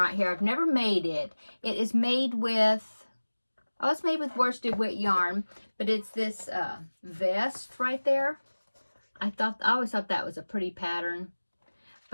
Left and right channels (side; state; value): both; inverted; correlation -1.00